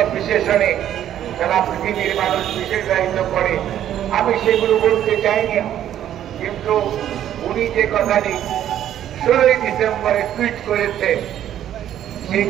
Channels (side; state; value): left; quieter; 11.1 dB